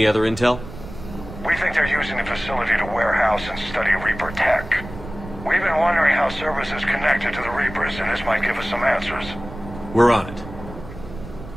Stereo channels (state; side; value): noise; right; rumble, 13 dB below the sound